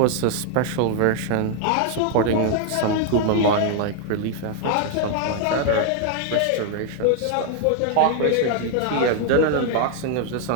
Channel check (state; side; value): different; both; correlation 0.00